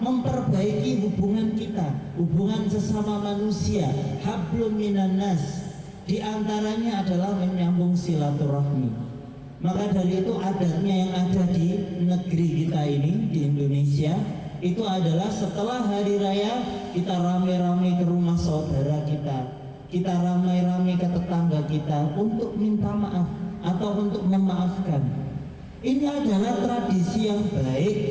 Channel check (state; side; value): identical; both; correlation 1.00